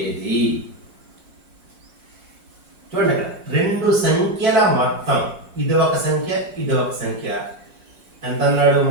ఏది? చూడండి, రెండు సంఖ్యల మొత్తం, ఇది ఒక సంఖ్య, ఇది ఒక సంఖ్య. ఎంత అన్నాడు?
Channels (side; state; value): left; late; 5.6 ms